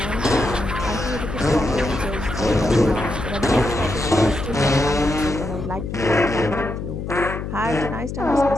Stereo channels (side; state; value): left; noise; hum, 6 dB below the sound